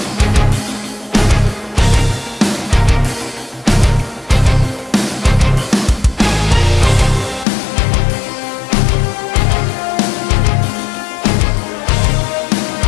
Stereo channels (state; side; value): drops out; right; at 7.5 s